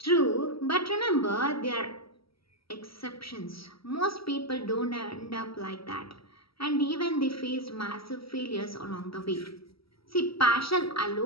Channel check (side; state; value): right; late; 0.75 ms